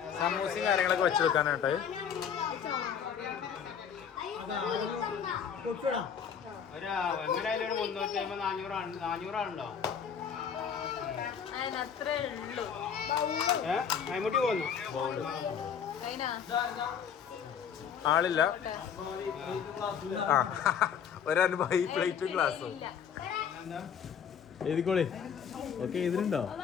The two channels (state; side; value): quieter; right; 7.6 dB